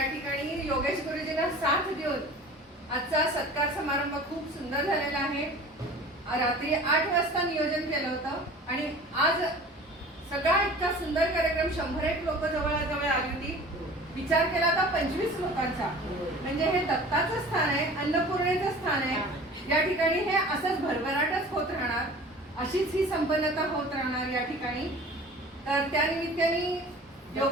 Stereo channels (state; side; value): normal; both; correlation 0.42